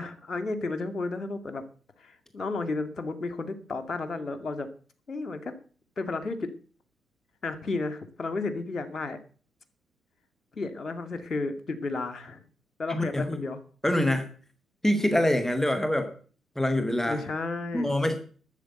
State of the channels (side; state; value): both; normal; correlation 0.90